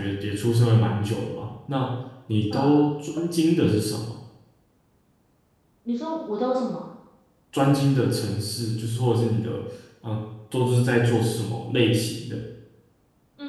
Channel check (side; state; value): both; identical; correlation 1.00